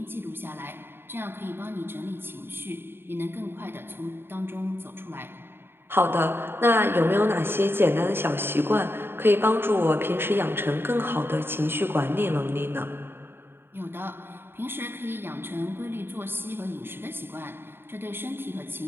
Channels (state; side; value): late; left; 0.11 ms